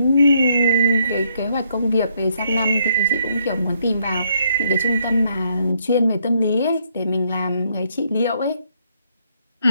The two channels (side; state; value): both; inverted; correlation -0.72